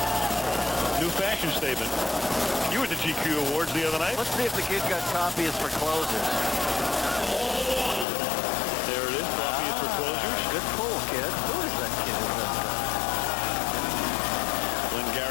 New fashion statement. You were at the GQ Awards the other night. Let's see if the kid got copies for closers. There it is, copies for closers. Good pull, kid. Who is that kid who does that?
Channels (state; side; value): drops out; right; at 8.1 s